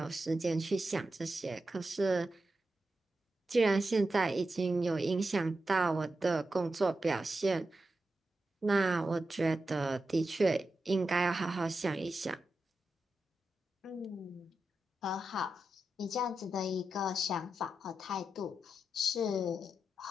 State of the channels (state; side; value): normal; both; correlation 0.89